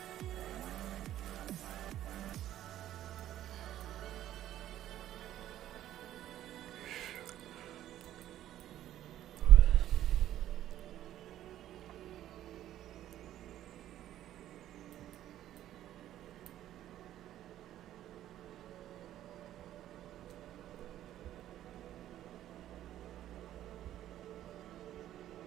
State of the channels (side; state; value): left; quieter; 12.5 dB